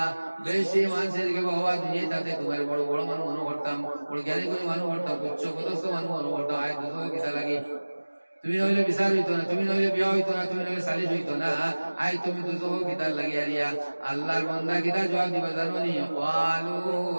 বেশি মানুষের শিখাইবা হওয়া দুনিয়া তাতে তোমার বড় বড় মানুষ মনে করতাম বড় জ্ঞানী করে মানুষ করতাম উচ্চ পদস্থ মানুষ মনে করতাম আয় দুজক কিতা লাগে তুমি নইলে বিচার হইতো না, তুমি নইলে বিয়া হইতো না, তুমি নইলে সালিশ হইতো না। আই তুমি তো তো গীতার লাগিয়া দিয়া আল্লাহর বান্দা গীতা জবাব দিবা জানো নি? ওয়ালু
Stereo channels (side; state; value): both; inverted; correlation -1.00